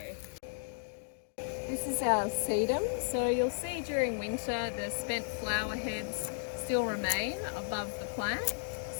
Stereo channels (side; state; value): right; silent; digital silence